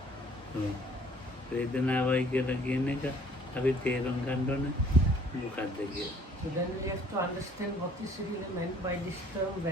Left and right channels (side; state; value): both; normal; correlation 0.57